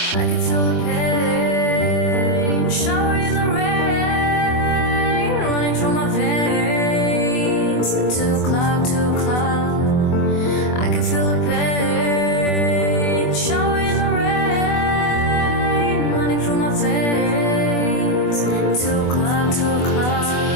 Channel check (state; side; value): late; right; 24 ms